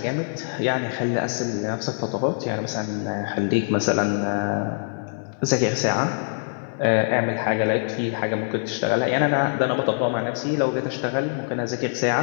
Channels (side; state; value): right; silent; digital silence